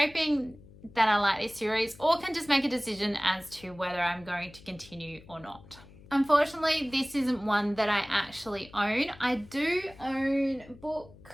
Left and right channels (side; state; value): left; noise; hum, 21 dB below the sound